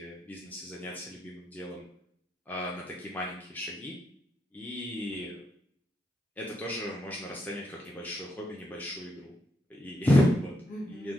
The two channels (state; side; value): normal; both; correlation 0.80